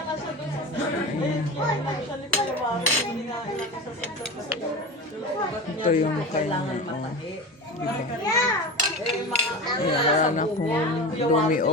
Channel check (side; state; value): both; normal; correlation 0.28